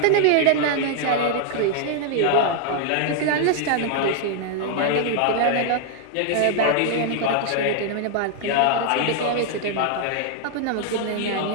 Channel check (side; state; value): both; different; correlation 0.00